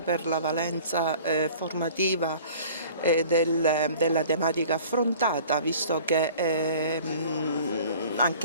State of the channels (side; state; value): both; inverted; correlation -0.47